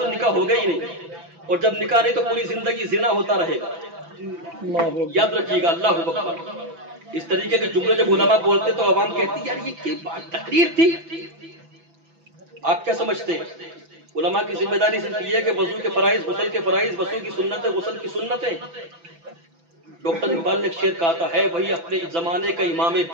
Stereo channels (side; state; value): left; late; 6.0 ms